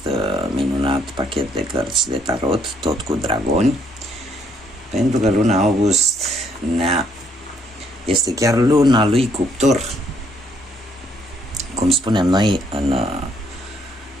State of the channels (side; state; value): both; normal; correlation 0.68